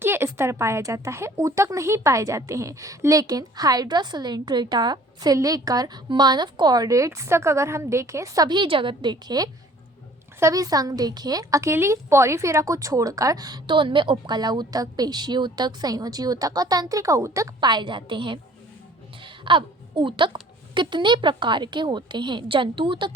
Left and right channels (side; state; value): both; normal; correlation 0.53